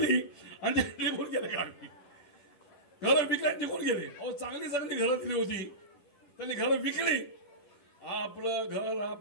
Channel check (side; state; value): right; late; 10 ms